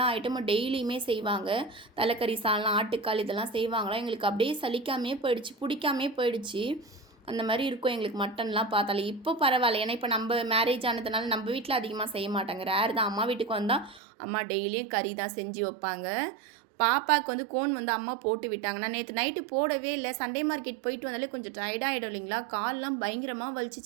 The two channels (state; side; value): drops out; left; at 14.0 s